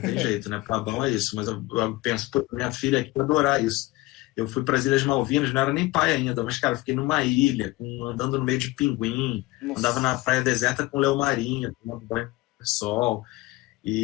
jeito, né? Pra bom é isso. Mas eu penso, pô, minha filha aqui vai adorar isso. Eu fui para as Ilhas Malvinas, não era nem pai ainda, mas, cara, fiquei numa ilha, andando no meio de pinguim, andava na praia deserta com leão marinho, tomando banho de sol,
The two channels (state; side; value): quieter; right; 20.0 dB